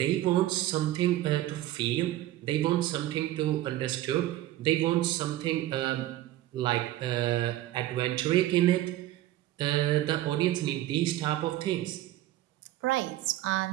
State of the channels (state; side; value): quieter; left; 14.7 dB